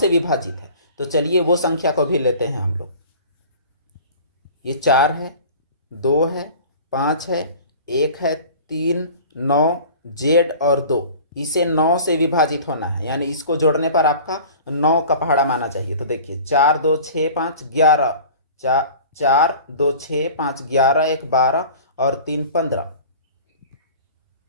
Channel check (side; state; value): both; inverted; correlation -0.43